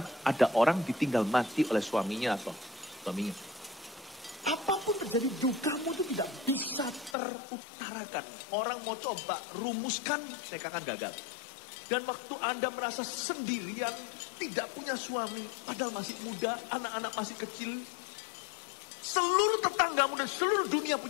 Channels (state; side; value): drops out; right; at 7.2 s